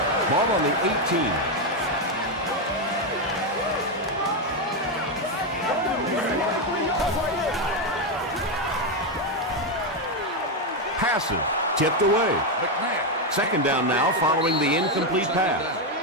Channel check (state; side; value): normal; both; correlation 0.06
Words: Ball on the 18. Passive. Tipped away. 2nd down now following the incomplete pass.